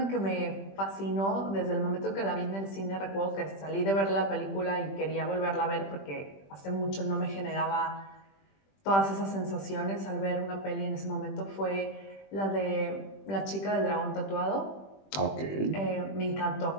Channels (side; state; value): right; late; 20 ms